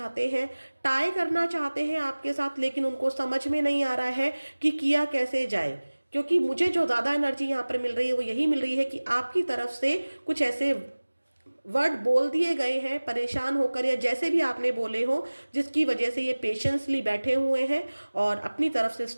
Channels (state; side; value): inverted; both; correlation -1.00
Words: हैं, टाई करना चाहते हैं आपके साथ, लेकिन उनको समझ में नहीं आ रहा है कि किया कैसे जाए। क्योंकि मुझे जो ज़्यादा एनर्जी यहाँ पर मिल रही है वो यही मिल रही है कि आपकी तरफ से कुछ ऐसे वर्ड बोल दिए गए हैं परेशान होकर, या जैसे भी आपने बोले हो, जिसकी वजह से ये पेशेंसली बैठे हुए हैं और अपनी तरफ से